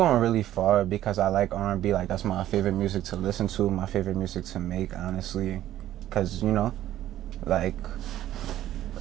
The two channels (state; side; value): quieter; left; 13.0 dB